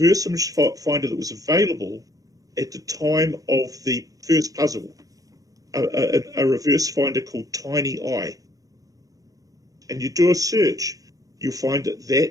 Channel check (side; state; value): left; late; 0.17 ms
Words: image finder that was available at the time of the first puzzle, a reverse finder called Tiny Eye, and you do a search, you'll find